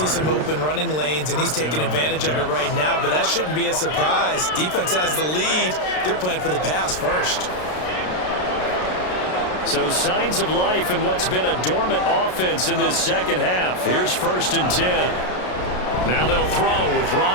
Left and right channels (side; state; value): right; late; 33 ms